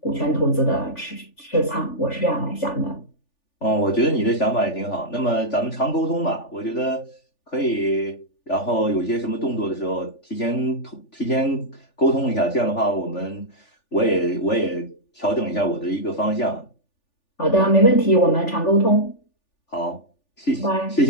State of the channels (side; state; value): right; late; 3.4 ms